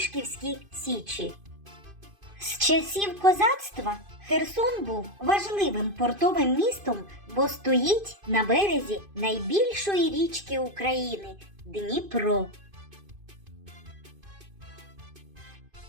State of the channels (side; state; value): left; late; 2.5 ms